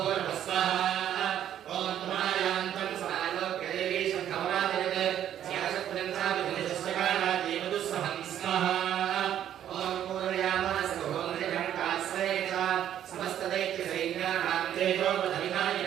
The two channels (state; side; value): quieter; left; 10.6 dB